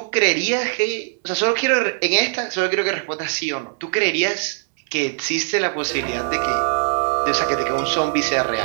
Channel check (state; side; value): silent; left; 65 dB below the other